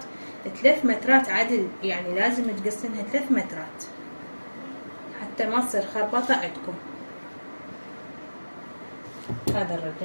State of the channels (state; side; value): inverted; both; correlation -1.00